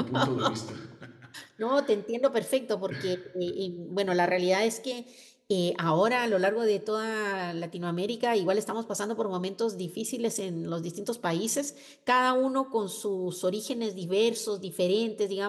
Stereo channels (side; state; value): both; identical; correlation 1.00